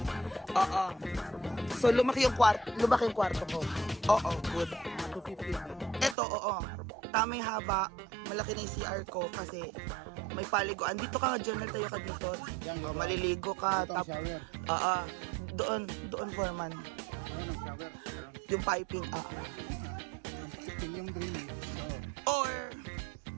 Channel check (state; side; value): drops out; left; at 6.2 s